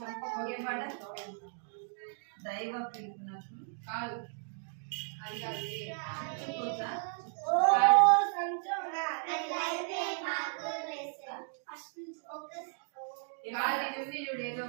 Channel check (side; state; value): left; silent; 55 dB below the other